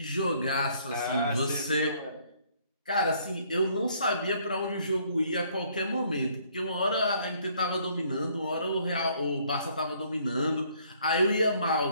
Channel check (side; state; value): both; inverted; correlation -0.64